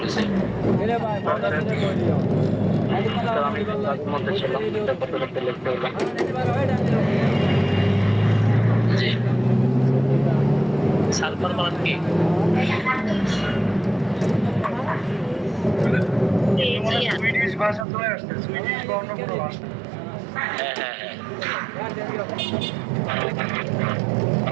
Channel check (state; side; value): drops out; left; at 17.9 s